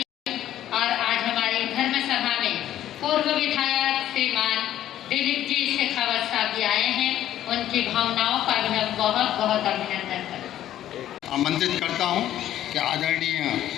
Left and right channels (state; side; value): quieter; right; 12.2 dB